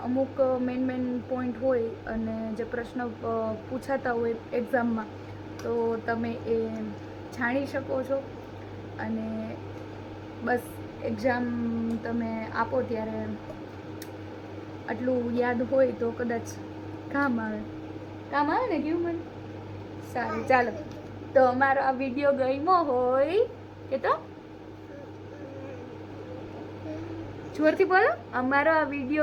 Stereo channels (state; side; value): identical; both; correlation 1.00